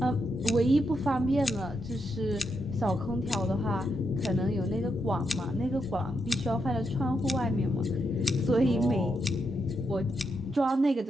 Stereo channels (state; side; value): normal; both; correlation 0.82